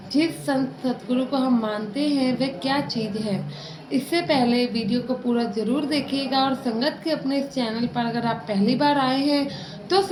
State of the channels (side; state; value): both; identical; correlation 1.00